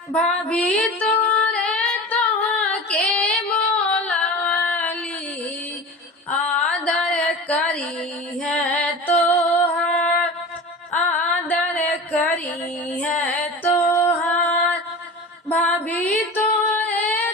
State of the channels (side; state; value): both; normal; correlation 0.33